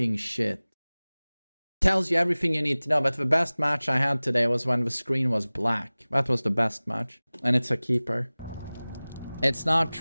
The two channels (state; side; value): inverted; both; correlation -0.99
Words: shit. Tells you everything you need to know. But the best match I had today was when the screen was black. That was the best match. And it's a keeper. It's not